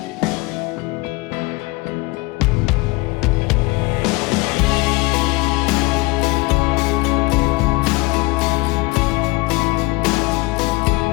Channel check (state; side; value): quieter; right; 24.0 dB